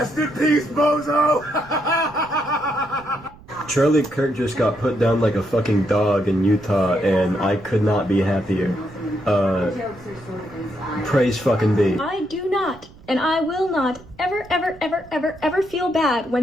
in peace, bozo! Charlie Kirk just got put down like a fucking dog in Utah, and I could not be happier. Praise fucking be. I do not, and I will not, ever feel bad when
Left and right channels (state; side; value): noise; right; rumble, 22 dB below the sound